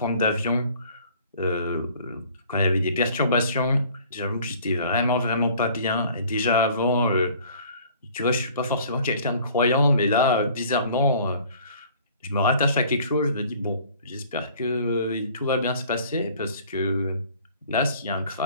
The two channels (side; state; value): both; inverted; correlation -0.52